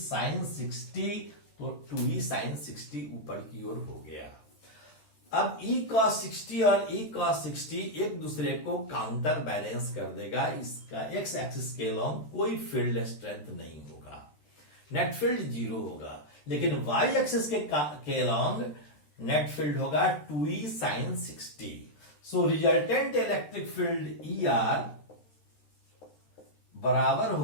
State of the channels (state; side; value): late; right; 13 ms